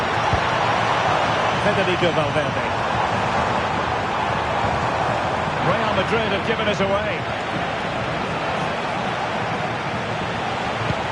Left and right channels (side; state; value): both; identical; correlation 1.00